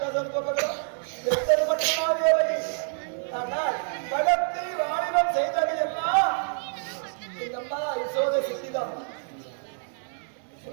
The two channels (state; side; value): silent; left; 60 dB below the other